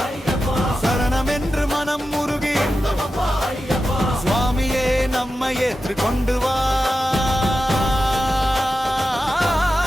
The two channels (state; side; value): normal; both; correlation 0.91